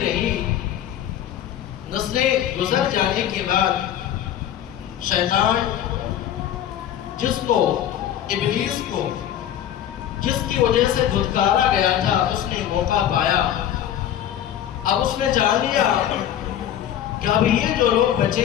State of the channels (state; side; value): quieter; right; 10.9 dB